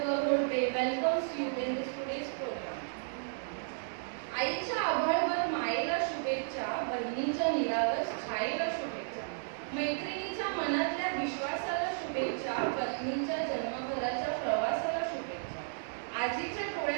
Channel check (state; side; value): silent; left; digital silence